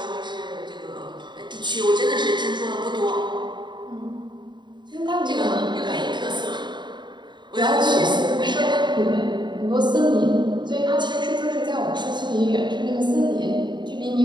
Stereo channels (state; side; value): late; left; 0.22 ms